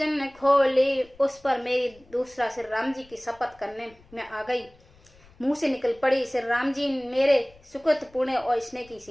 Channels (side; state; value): left; noise; rumble, 27 dB below the sound